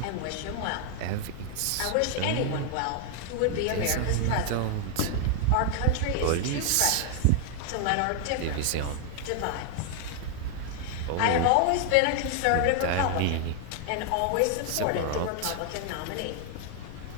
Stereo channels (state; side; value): different; both; correlation 0.00